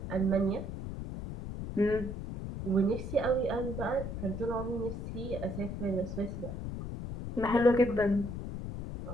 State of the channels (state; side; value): noise; left; rumble, 6 dB below the sound